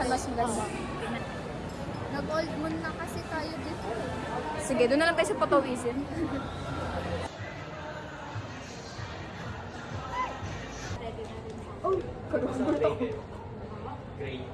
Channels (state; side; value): identical; both; correlation 1.00